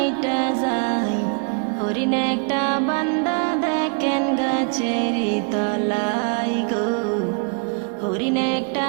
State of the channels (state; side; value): quieter; left; 38.4 dB